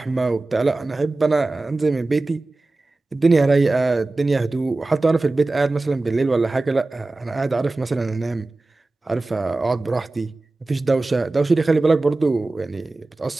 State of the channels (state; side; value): quieter; left; 3.1 dB